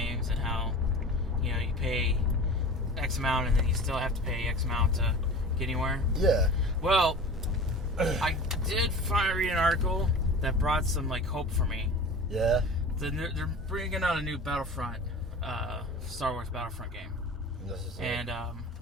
and how, you know, you pay X amount and then you still have to pay X amount to get anywhere. Yeah. Well, I did finally read an article that brought some, like, hope for me. Yeah. They're bringing out a new Battlefront, Star Wars Battlefront game. And,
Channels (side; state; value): both; normal; correlation 0.37